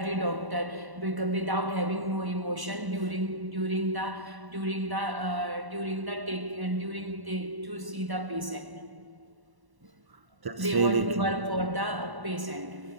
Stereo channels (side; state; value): left; late; 1.1 ms